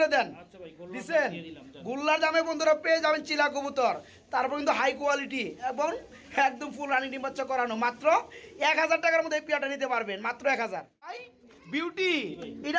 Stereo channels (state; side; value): identical; both; correlation 1.00